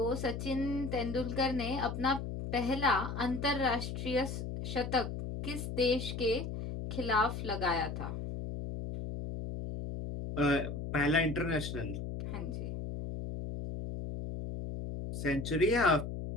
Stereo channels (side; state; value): left; noise; hum, 5 dB below the sound